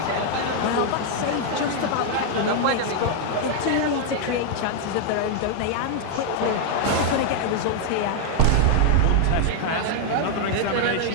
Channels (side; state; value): both; different; correlation 0.00